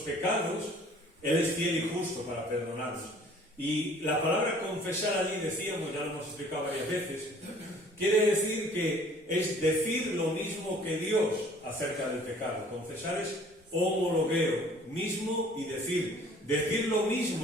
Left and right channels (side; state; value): both; normal; correlation 0.53